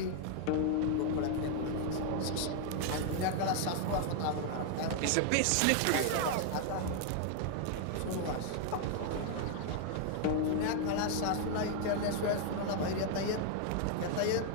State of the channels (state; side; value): different; both; correlation 0.00